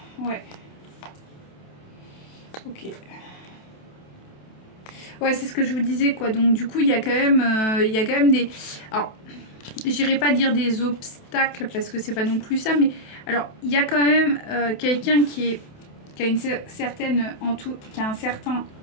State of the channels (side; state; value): right; late; 27 ms